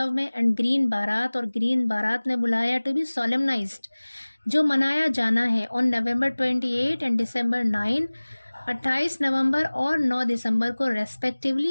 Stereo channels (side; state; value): both; inverted; correlation -1.00